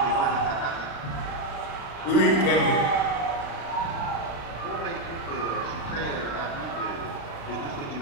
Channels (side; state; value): right; late; 36 ms